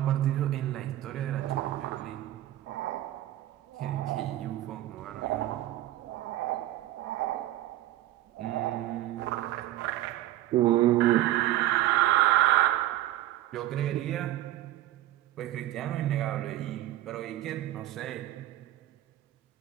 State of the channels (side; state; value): left; quieter; 14.5 dB